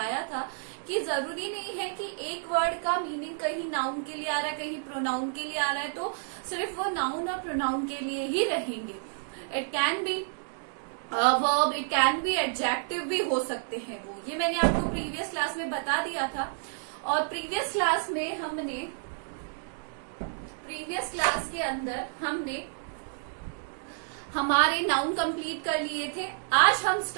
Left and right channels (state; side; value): silent; left; 58 dB below the other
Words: था कि जरूरी नहीं है कि एक वर्ड का मीनिंग कहीं नाउन के लिए आ रहा है, कहीं प्रोनाउन के लिए आ रहा है तो सिर्फ वो नाउन और प्रोनाउन के लिए ही रहेंगे। It can be verb, it can be adjective भी हो सकते हैं वो। ये मैंने आपको प्रीवियस क्लास में बता दिया था। और प्रीवियस क्लास के अंदर हमने हमारे नाउन कंप्लीट कर लिए थे। आज हम